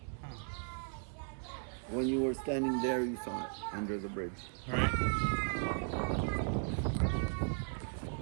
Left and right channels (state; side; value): silent; left; 53 dB below the other